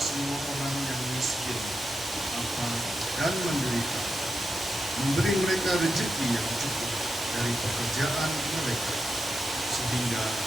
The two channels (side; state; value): both; normal; correlation 0.87